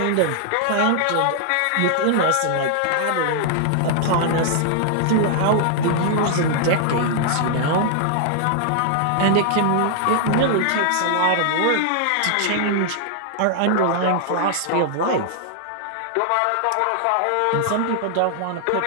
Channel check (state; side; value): different; both; correlation -0.01